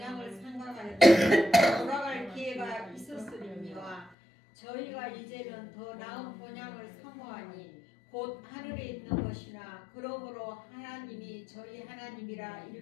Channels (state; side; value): drops out; right; at 4.1 s